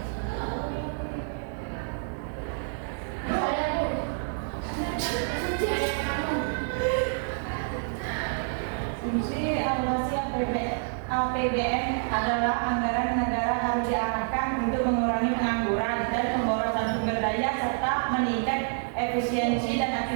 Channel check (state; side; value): silent; left; 59 dB below the other